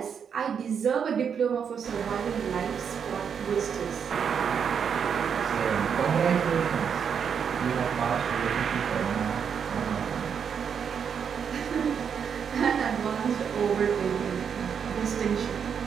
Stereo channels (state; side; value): quieter; left; 7.2 dB